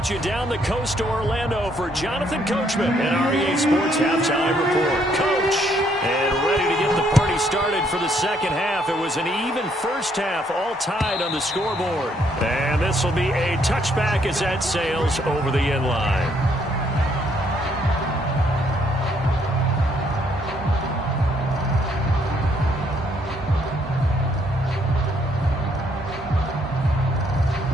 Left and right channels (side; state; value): both; normal; correlation 0.69